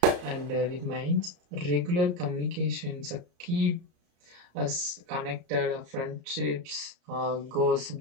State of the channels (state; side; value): late; left; 34 ms